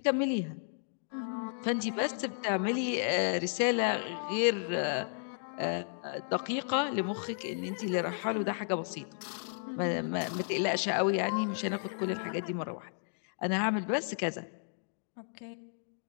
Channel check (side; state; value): right; silent; digital silence